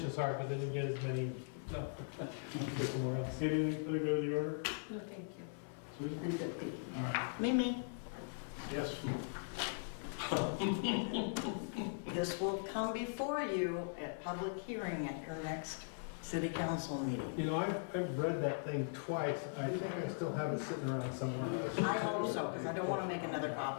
as hard, but they didn't get as many, so, go somewhere else. Anything for the good of the order? No, thank you. Susan? I'm good, thank you. All right, Mimi, yes. this will come before you at public hearing at your next city council meeting. You know, I've read that thing twice. I think I still have it sitting around somewhere. I hope so, because I don't want to make another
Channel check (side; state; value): right; silent; 51 dB below the other